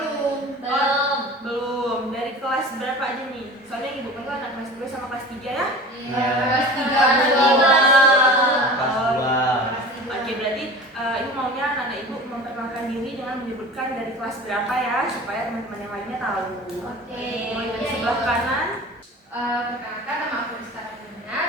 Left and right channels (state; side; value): normal; both; correlation 0.38